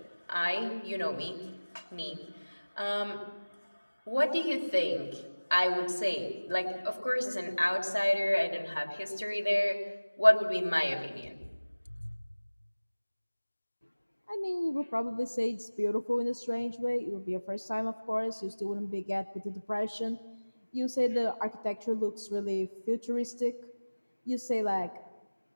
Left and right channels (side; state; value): both; inverted; correlation -1.00